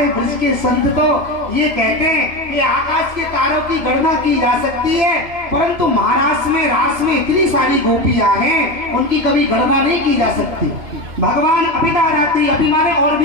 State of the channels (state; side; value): late; left; 2.4 ms